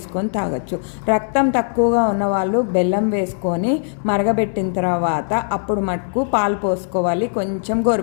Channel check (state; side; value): silent; right; digital silence